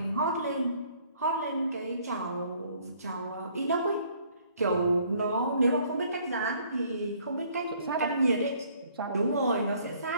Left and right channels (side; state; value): both; inverted; correlation -0.61